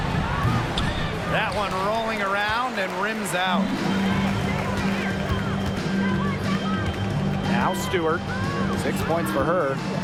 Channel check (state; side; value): identical; both; correlation 1.00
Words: That one rolling around and rims out. Now Stewart. 6 points for her.